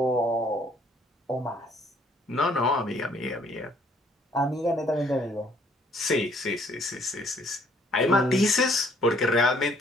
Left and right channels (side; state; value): both; normal; correlation 0.62